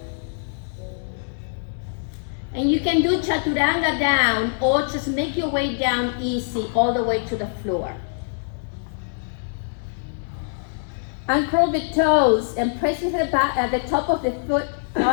And you can do chaturanga down, or just make your way down easy all the way to the floor. Uncurl the toes and press with the back at the top of the foot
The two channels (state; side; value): silent; right; digital silence